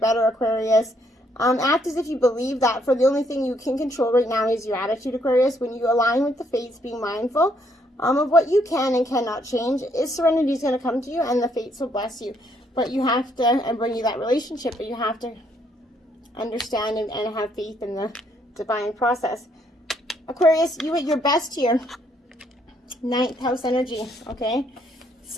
Aquarius. Act as if you believe that, for the only thing you can control right now is your attitude, Aquarius. When you align with the fates, being mindful of what you can and cannot change, serenity is going to come to you, and the fates will bless you. But you have to, and bring you that relationship, but you have to understand and have faith in the divine process. Aquarius, you at your best here. 9th house energy, okay?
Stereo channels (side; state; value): both; normal; correlation 0.71